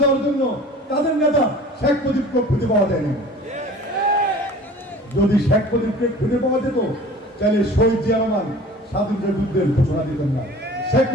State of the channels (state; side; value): normal; both; correlation 0.44